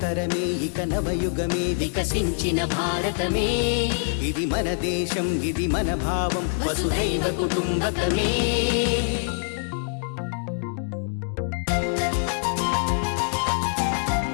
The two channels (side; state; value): right; silent; 62 dB below the other